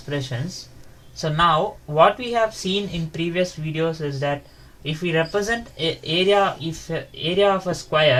So now what we have seen in previous videos is that if we represent area of a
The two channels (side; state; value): both; identical; correlation 1.00